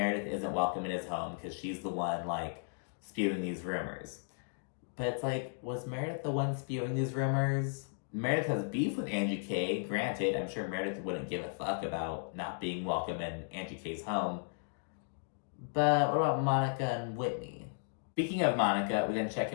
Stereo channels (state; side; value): silent; right; digital silence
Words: isn't welcome in his home because she's the one like spewing these rumors. But it's like, was Meredith the one spewing these rumors? Meredith has beef with Angie K. Granted, I'm sure Meredith wouldn't give a fuck about not being welcome in Angie K's home. But what about Monica and Whitney? Speaking of Monica, we then check